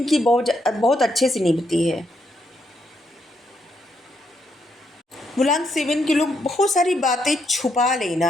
बहुत बहुत अच्छे से निभती है। मूलांक 7 के लोग बहुत सारी बातें छुपा लेना,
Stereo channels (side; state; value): both; normal; correlation 0.77